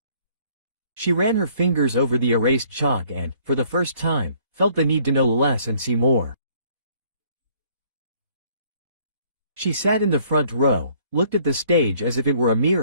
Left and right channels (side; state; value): left; late; 2.1 ms